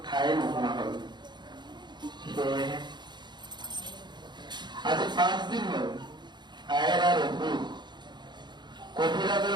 ঠাই নোহোৱা হল সেয়েহে আজি 5 দিন হল আয়েৰ আৰু অসুখ কবিৰাজৰ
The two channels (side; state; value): left; late; 0.21 ms